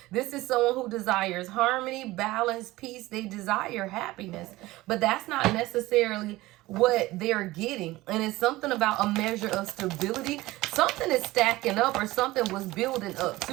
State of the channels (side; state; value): left; quieter; 18.6 dB